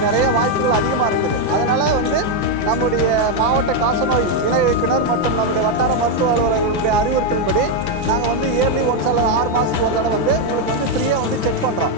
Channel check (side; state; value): left; late; 5.9 ms